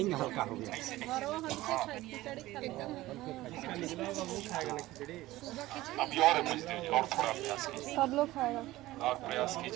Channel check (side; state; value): left; quieter; 17.2 dB